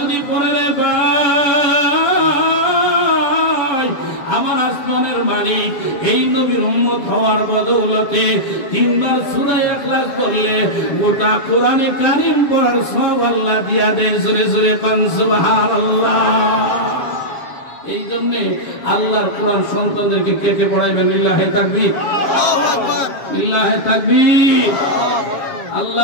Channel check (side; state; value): right; late; 7.4 ms